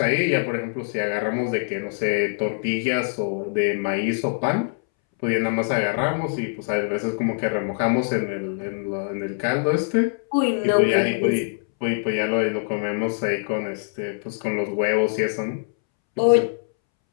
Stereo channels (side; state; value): right; silent; 63 dB below the other